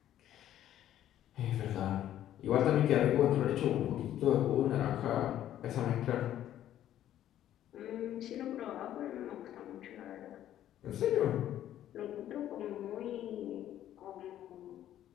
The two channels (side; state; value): right; quieter; 11.9 dB